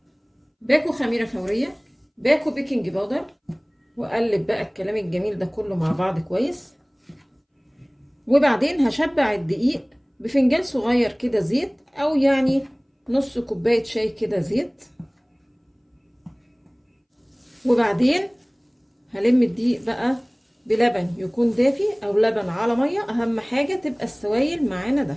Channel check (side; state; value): both; identical; correlation 1.00